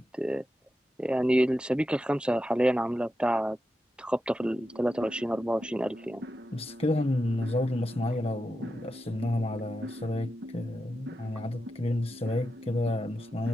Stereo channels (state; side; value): normal; both; correlation 0.89